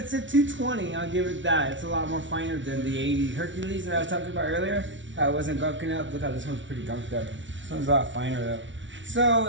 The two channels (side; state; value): left; late; 0.55 ms